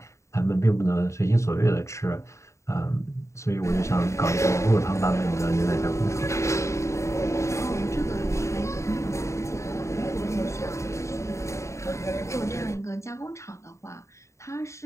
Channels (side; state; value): right; late; 0.14 ms